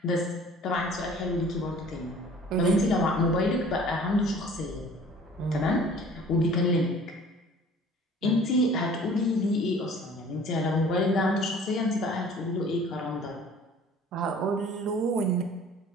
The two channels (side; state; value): both; normal; correlation 0.49